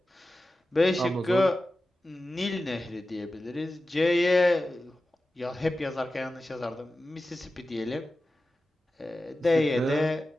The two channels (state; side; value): normal; both; correlation 0.94